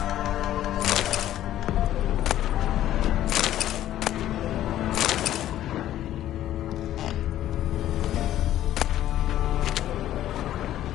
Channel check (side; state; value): right; quieter; 12.7 dB